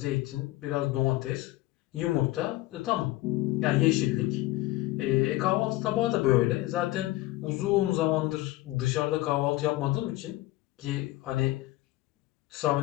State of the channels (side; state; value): right; quieter; 17.9 dB